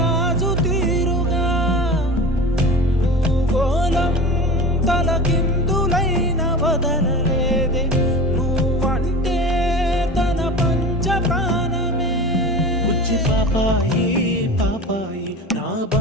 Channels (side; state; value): both; normal; correlation 0.33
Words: తీరుగా భూగోళం తలకిందులైన వదలలేదే నువ్వంటే తన పంచ ప్రాణమే బుజ్జి పాపాయి పాపాయి నా